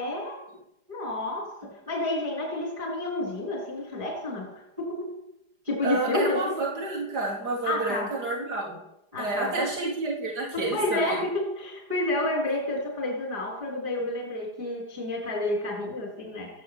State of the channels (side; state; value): left; late; 4.9 ms